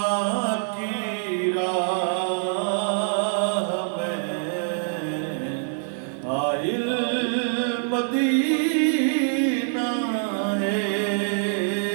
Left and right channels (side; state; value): left; silent; 62 dB below the other